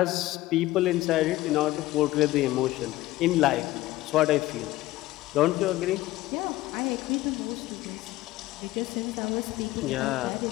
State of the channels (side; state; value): right; quieter; 17.1 dB